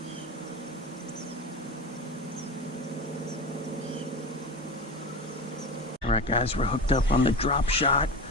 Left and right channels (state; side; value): normal; both; correlation 0.27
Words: Alright guys, we're hooked up on the drop shot.